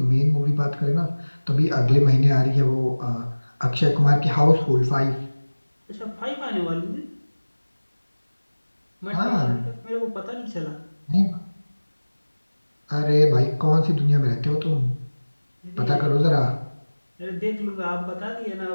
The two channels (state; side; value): inverted; both; correlation -1.00